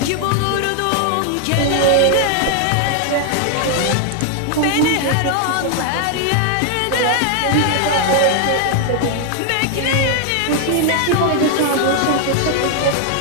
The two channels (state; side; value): different; both; correlation 0.00